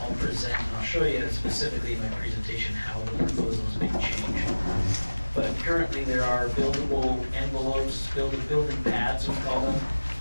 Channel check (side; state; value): both; inverted; correlation -1.00